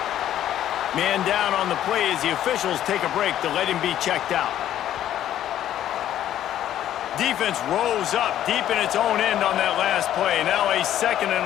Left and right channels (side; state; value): right; quieter; 11.6 dB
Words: Man down on the play as the officials take a break to let him be checked out. Defense rose up deep in its own end on that last play. Now a second and